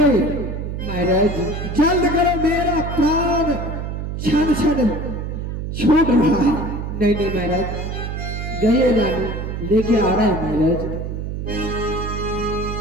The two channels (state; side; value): noise; right; hum, 5 dB below the sound